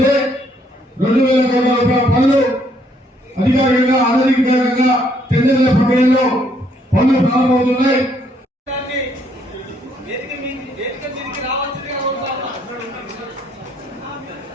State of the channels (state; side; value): normal; both; correlation 0.69